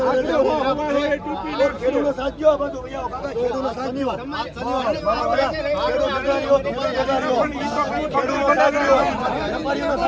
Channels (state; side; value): identical; both; correlation 1.00